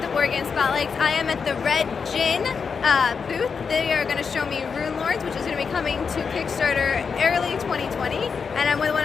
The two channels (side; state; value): right; quieter; 5.7 dB